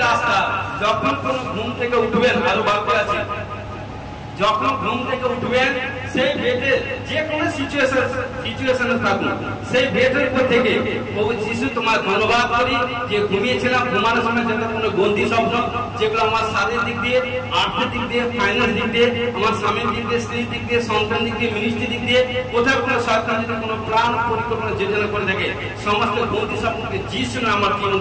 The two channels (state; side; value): identical; both; correlation 1.00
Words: রাস্তা, যখন কোন ঘুম থেকে উঠবেন, আরো বাক্য আছে, যখন ঘুম থেকে উঠবেন সেই বেডে যে কোনো সিচুয়েশনে থাকুন, সেই বেডের উপর থেকে প্রভু যিশু তোমার ধন্যবাদ করি যে ঘুমিয়েছিলাম, ঘুমানোর সময় যত কোনো গন্দি স্বপ্ন যেগুলো আমার শারীরিক দিক দিয়ে, আর্থিক দিক দিয়ে, ফাইন্যান্স দিক দিয়ে, আমার স্বামীর দিক দিয়ে, স্ত্রীর দিক দিয়ে, সন্তান দিক দিয়ে, মিনিস্ট্রি দিক দিয়ে, কোথাও কোনো সরকার যদি কোনো প্ল্যান পরিকল্পনা যোজনা করে থাকে, সমস্ত গন্দি স্বপ্নকে যিশু নামে আমার জীবন